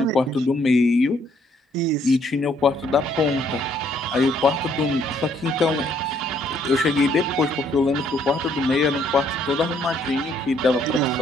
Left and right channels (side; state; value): both; normal; correlation 0.67